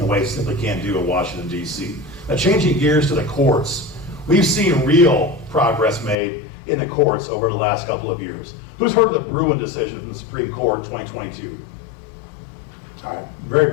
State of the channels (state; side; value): drops out; right; at 6.2 s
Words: a way you simply can't do in Washington, D.C. Now, changing gears to the courts, we've seen real progress made in the courts over the last couple of years. Who's heard of the Bruen decision from the Supreme Court in 2022? All right, very